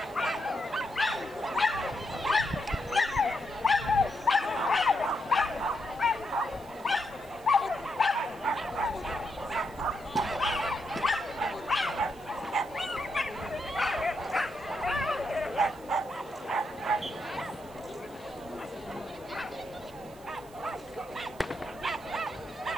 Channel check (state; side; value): noise; right; hiss, 24 dB below the sound